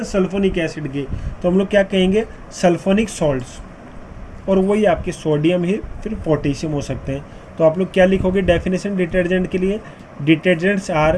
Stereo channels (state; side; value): identical; both; correlation 1.00